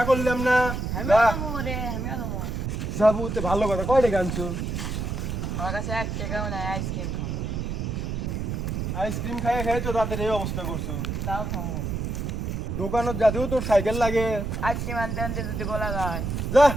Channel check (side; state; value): right; noise; rumble, 3 dB below the sound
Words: করলাম না। আমিও যাবো রে, আমিও যাবো। যাবো তো ভালো কথা, কয় টাকা আনছো? আমার কাছে 1 টাকাও নাই, আইসক্রিম খাবো। আইসক্রিম খাই খাই তো রাতের এই অবস্থা করছো। তাও খাবো। দোকানত যাতেও তোর সাইকেল লাগে। আইসক্রিম আনতে আনতে যদি গলা যায়। যা